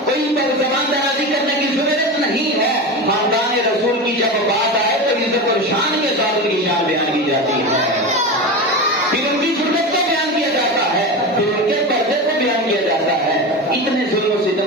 کوئی زبان درازی کرنے کی ضرورت نہیں ہے۔ خاندان رسول کی جب بات آئے تو عزت اور شان کے ساتھ ان کی شان بیان کی جاتی ہے، پھر ان کی ضرورت کو بیان کیا جاتا ہے، پھر ان کے پردے کو بیان کیا جاتا ہے۔ اتنے ظلم و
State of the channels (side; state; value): both; normal; correlation 0.23